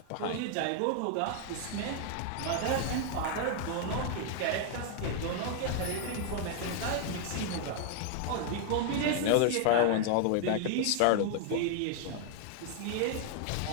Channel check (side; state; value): both; different; correlation 0.00